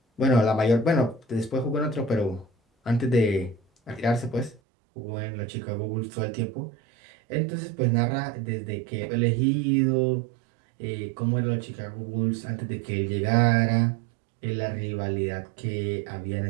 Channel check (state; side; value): drops out; left; at 4.6 s